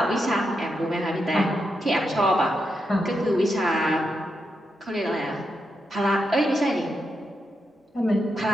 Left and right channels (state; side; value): normal; both; correlation 0.84